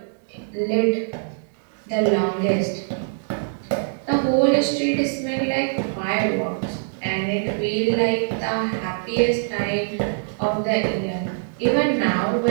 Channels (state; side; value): silent; left; digital silence